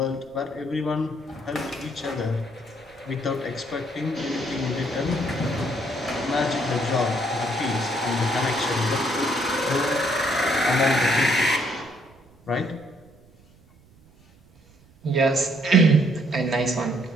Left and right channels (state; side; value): noise; right; rumble, 28 dB below the sound